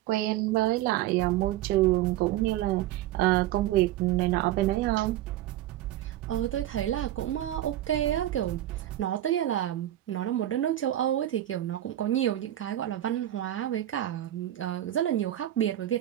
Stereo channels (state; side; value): quieter; left; 13.5 dB